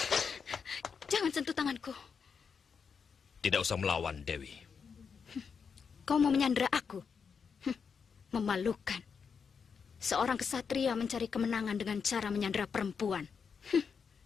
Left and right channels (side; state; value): right; quieter; 6.1 dB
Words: Jangan sentuh tanganku. Tidak usah melawan, Dewi. Kau mau menyandera aku? Memalukan. Seorang kesatria mencari kemenangan dengan cara menyandera perempuan.